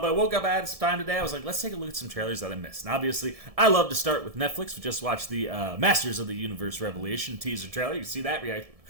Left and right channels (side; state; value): left; late; 1.7 ms